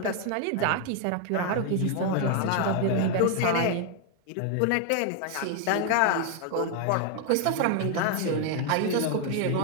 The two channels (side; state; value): both; different; correlation 0.01